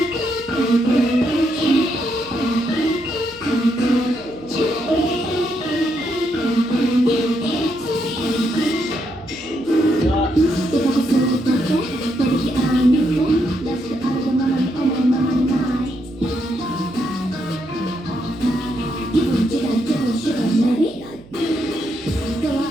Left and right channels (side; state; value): right; noise; hum, 22 dB below the sound